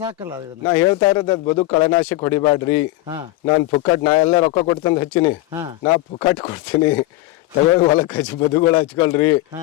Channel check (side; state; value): right; quieter; 17.4 dB